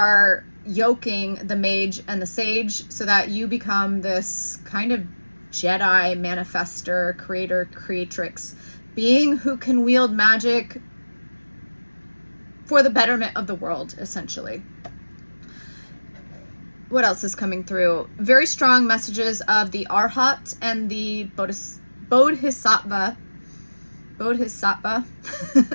yoking the mage and the sage so that you become this kind of Jedi manifester, creator, creatrix being who can wield magic for the betterment of the world, essentially. What else is coming through? Very strong messages of the Arhat and the Bodhisattva.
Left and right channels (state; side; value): inverted; both; correlation -1.00